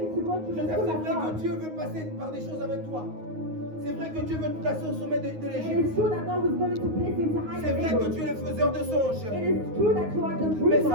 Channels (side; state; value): left; late; 9.5 ms